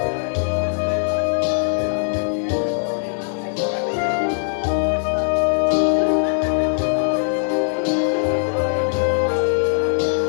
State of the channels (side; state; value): right; silent; digital silence